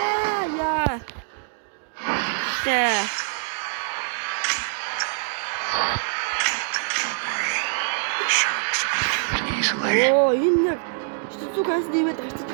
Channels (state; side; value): silent; left; digital silence